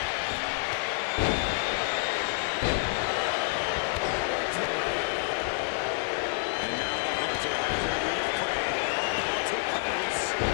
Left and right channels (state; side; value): silent; right; 57 dB below the other